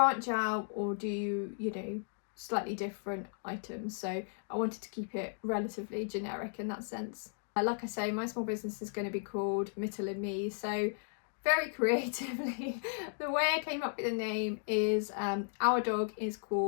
out or do slightly different items. So I wanted to keep it relatively generic in that sense. Like I say, my small business is going to be called Mittel and Me, so very creatively the way I came up with the name is our dog is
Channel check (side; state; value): right; silent; digital silence